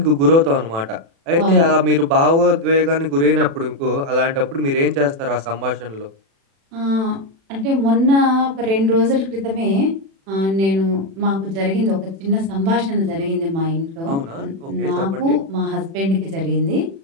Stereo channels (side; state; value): left; late; 36 ms